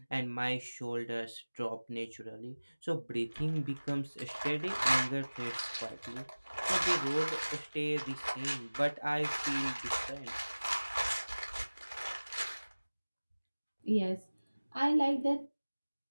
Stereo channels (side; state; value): both; inverted; correlation -1.00